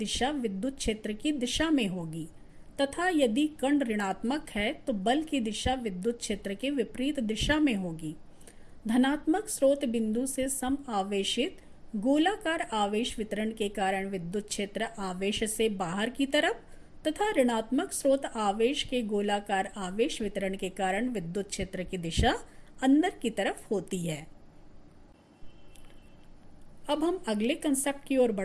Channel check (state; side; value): identical; both; correlation 1.00